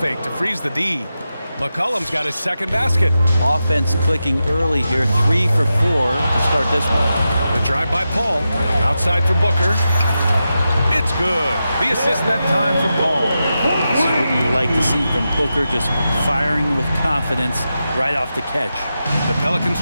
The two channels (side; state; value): both; inverted; correlation -0.90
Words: to freeze the D. McCollum's got his second basket. Offense clicking early here, 3 for 4 to start this one. The drive by Paul. Outside for Booker. It's good. The assist that time from Paul. This is what you like to see from Booker, just firing with confidence right off the catch. The Pelicans